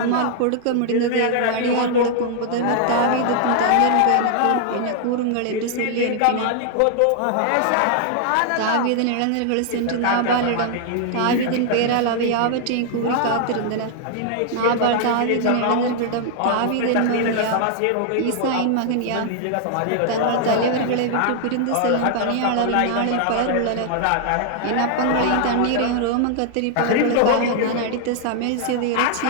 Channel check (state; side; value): different; both; correlation 0.00